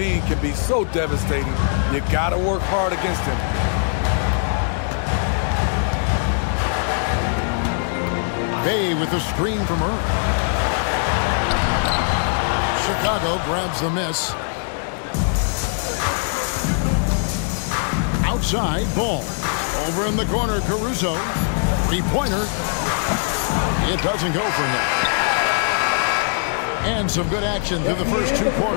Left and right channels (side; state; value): right; silent; digital silence